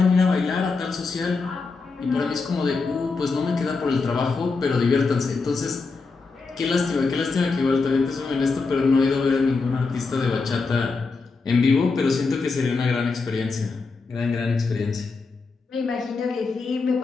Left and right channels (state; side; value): quieter; right; 4.2 dB